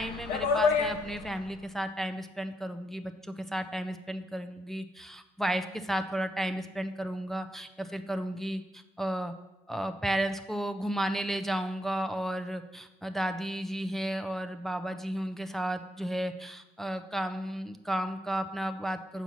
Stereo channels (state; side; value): normal; both; correlation 0.80